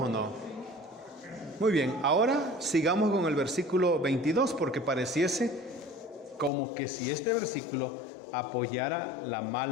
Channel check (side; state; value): right; drops out; at 6.5 s